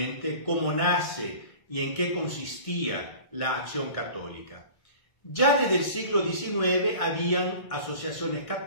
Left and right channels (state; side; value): late; right; 1.6 ms